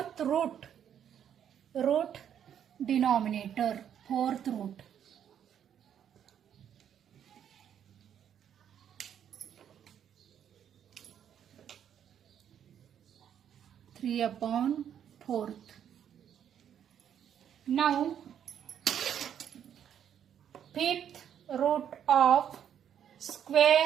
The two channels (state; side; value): quieter; left; 9.2 dB